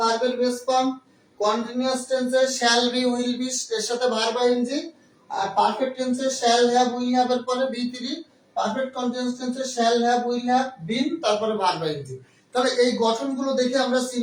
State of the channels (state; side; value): identical; both; correlation 1.00